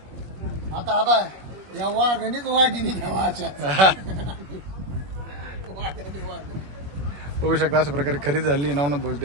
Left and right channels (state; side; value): late; left; 21 ms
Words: आता आता या वाघणीच वाघिणी ठेवायच्या. बघू शकता अशा प्रकारे खरेदी झाली नवनाथ भाऊ